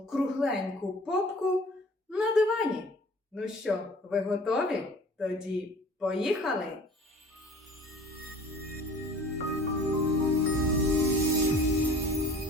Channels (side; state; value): both; normal; correlation 0.47